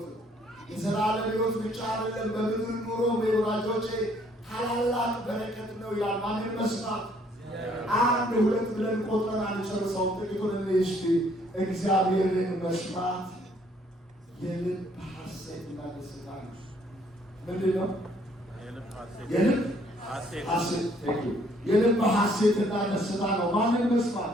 ነው። የዘላለም ሕይወት ብቻ አይደለም፣ በምድር ኑሮ ወዳጆቼ ታላላቅ በረከት ነው። ማንን መስማት? አንድ ሁለት ብለን ቆጥረን አንጨርሰውም። ጥቂቱን እስቲ እግዚአብሔርን መስማት የልብ ሐሴትና ደስታ ነው። ምንድን ነው? የልብ ሐሴትና ደስታ ነው። ማንን መስማት?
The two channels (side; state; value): both; normal; correlation 0.64